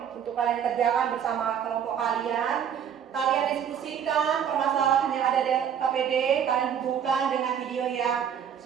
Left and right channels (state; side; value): quieter; left; 8.4 dB